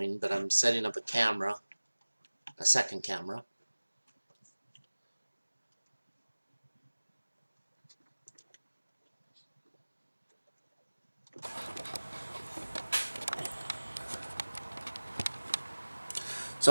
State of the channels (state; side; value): inverted; both; correlation -1.00